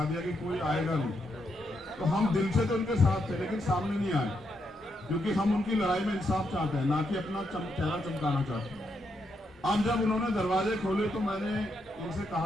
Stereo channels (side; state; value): both; normal; correlation 0.80